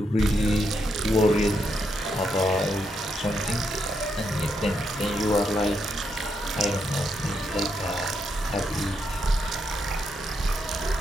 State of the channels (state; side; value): normal; both; correlation 0.80